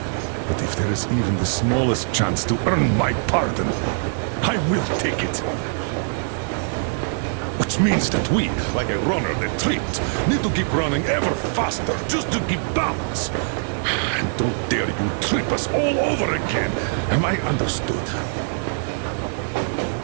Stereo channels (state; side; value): silent; left; 62 dB below the other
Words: But if there is even the smallest chance to earn my pardon, I will take it. Which means that we, like a runner that tripped, need to keep running ever faster just to keep balance. And don't dare you trip us all over again. Am I understood?